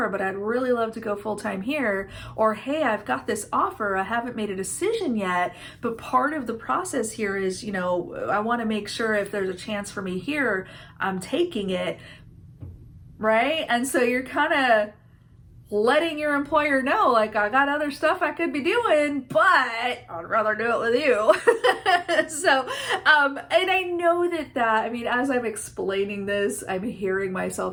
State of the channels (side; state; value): both; identical; correlation 1.00